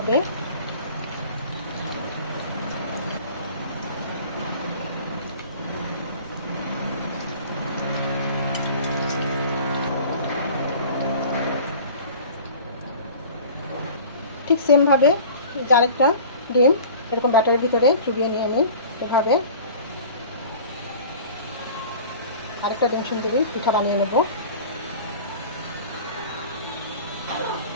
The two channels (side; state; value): both; inverted; correlation -0.42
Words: ঠিক সেমভাবে আরেকটা ডিম এরকম ব্যাটারের ভিতরে চুবিয়ে নিয়ে নিই। এভাবে আরেকটা ডিম সুন্দরী পিঠা বানিয়ে নেব।